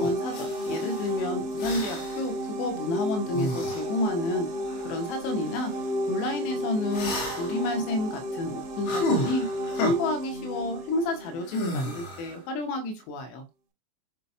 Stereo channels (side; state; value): right; late; 23 ms